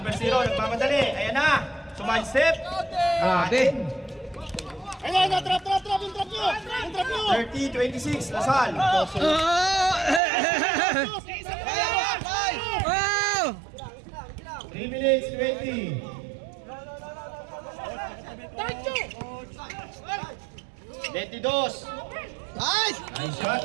0, nagmamadali. Ayan na, sumide step. Grabe. Ayun na, trap yung trap nyo! Yung trap nyo! 30-26, Lasal. Wow! 3 minutes, 20. Tacho! 22. Nice! Nice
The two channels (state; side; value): drops out; left; at 10.2 s